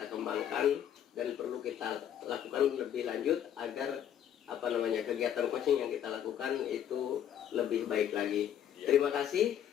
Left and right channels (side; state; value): right; quieter; 9.9 dB